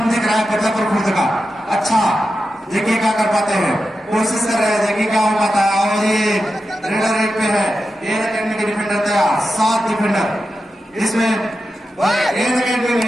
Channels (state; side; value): normal; both; correlation 0.90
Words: दिख रहा है बदलापुर खुद का। अच्छा देखिए क्या कर पाते हैं, कोशिश कर रहे हैं, देखिए क्या हो पाता है। और ये रेडर रेट पे है एयर अकेडमी के डिफेंडर तैयार, 7 डिफेंडर। इसमें एयर अकेडमी